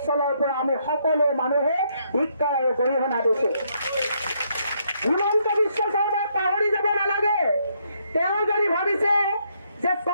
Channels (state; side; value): inverted; both; correlation -0.73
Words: পৰা আমি সকলো মানুহে শিক্ষা আৰু গৰিহণা দিছোঁ। হিমন্ত বিশ্ব শৰ্মাক পাহৰি যাব নালাগে। তেওঁ যদি ভাবিছে যে